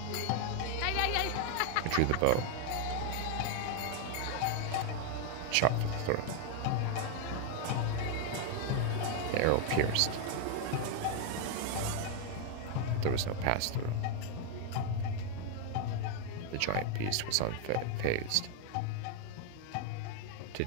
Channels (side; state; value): both; different; correlation 0.00